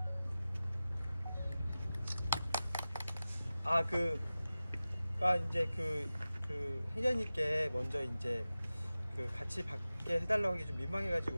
이제 그 회장님께 먼저 이제 같이 받게 해달라고 하기 좀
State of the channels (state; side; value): inverted; both; correlation -0.96